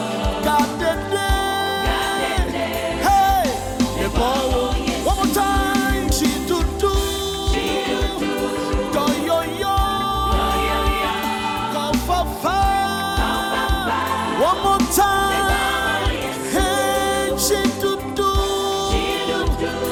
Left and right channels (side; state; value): both; identical; correlation 1.00